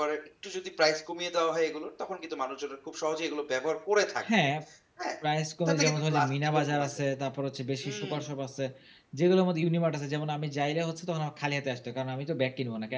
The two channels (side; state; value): both; identical; correlation 1.00